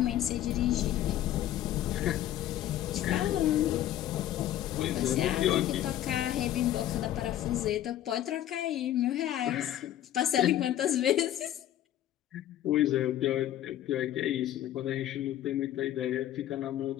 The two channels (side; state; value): right; quieter; 12.5 dB